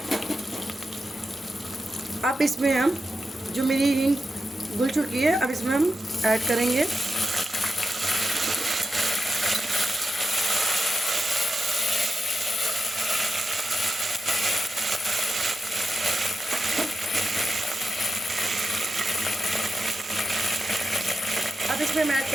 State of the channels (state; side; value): normal; both; correlation 0.89